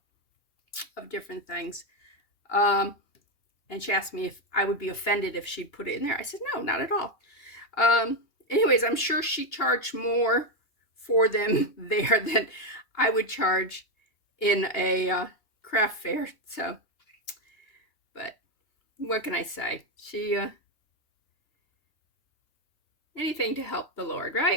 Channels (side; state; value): right; late; 2.8 ms